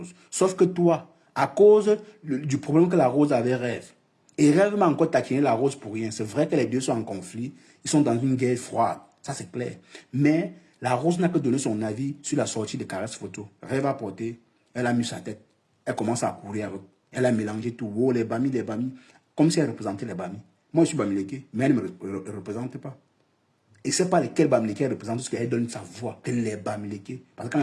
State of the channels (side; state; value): both; identical; correlation 1.00